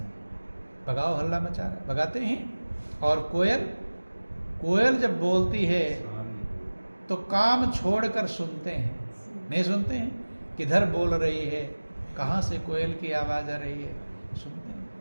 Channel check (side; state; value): both; inverted; correlation -1.00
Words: भगाओ हल्ला मचा रहा है, भगाते हैं। और कोयल जब बोलती है तो काम छोड़कर सुनते हैं, नहीं सुनते हैं किधर बोल रही है, कहाँ से कोयल की आवाज आ रही है, सुनते